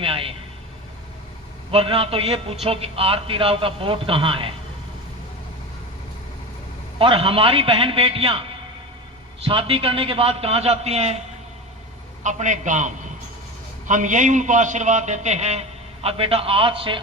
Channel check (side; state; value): both; normal; correlation 0.27